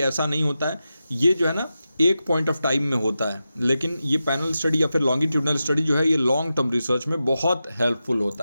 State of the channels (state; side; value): inverted; both; correlation -0.91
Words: नहीं होता है, ये जो है ना एक पॉइंट ऑफ टाइम में होता है। लेकिन ये पैनल स्टडी या फिर लॉन्गिट्यूडनल स्टडी जो है ये लॉन्ग टर्म रिसर्च में बहुत हेल्पफुल